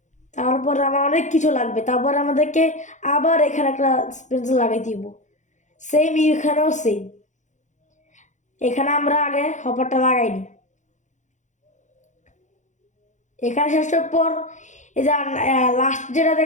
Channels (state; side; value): late; right; 0.35 ms